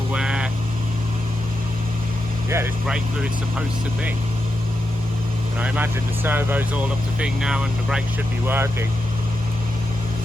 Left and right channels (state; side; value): normal; both; correlation 0.87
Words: where, yeah, this brake fluid's supposed to be. And I imagine the servo's all up to thing now and the brakes should be working.